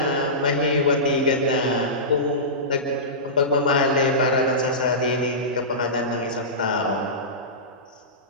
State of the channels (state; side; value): normal; both; correlation -0.20